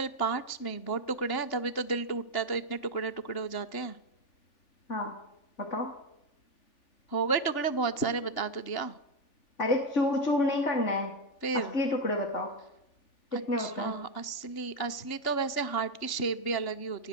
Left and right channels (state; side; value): late; right; 3.4 ms